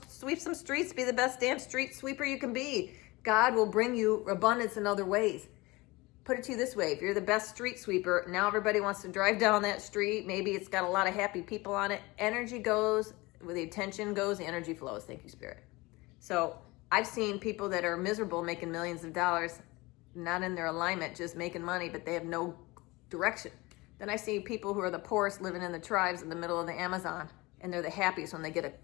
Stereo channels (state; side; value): quieter; right; 22.6 dB